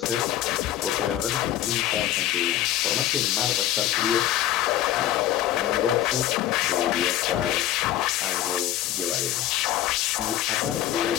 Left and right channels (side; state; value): right; quieter; 12.7 dB